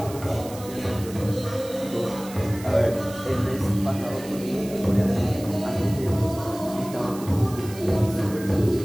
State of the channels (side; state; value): right; noise; hiss, 16 dB below the sound